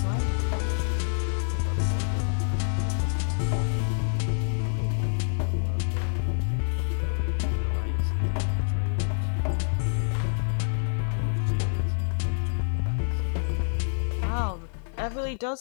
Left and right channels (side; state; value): right; silent; 55 dB below the other